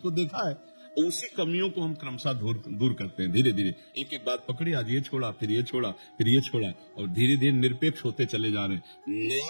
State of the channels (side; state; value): both; inverted; correlation -1.00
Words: देखा है। उसी कमियों को हम क्रमशः दूर करते हैं, धीरे धीरे एक एक बात पकड़ी, आज ये छोड़ा, फिर ये छोड़ा, फिर ये छोड़ा, और धीरे धीरे निरपेक्ष होते चले जा रहे हैं।